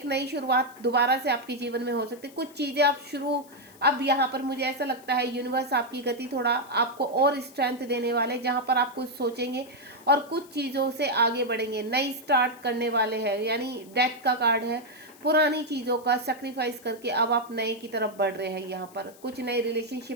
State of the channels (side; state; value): left; noise; hiss, 24 dB below the sound